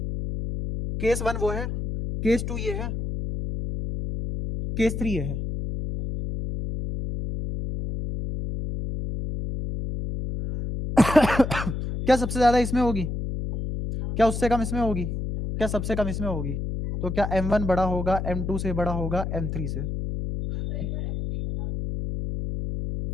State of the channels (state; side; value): noise; left; hum, 4 dB below the sound